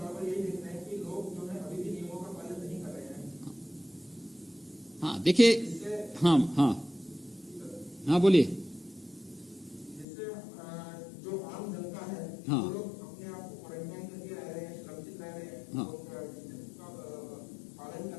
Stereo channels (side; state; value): right; drops out; at 10.1 s